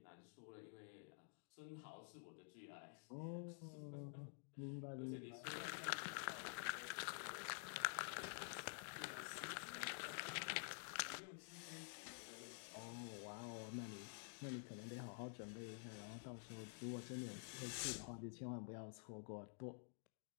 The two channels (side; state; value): right; silent; digital silence